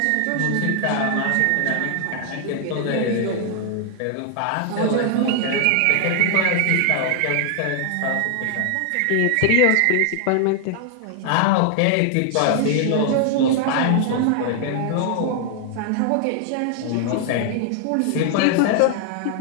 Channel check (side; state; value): both; different; correlation 0.00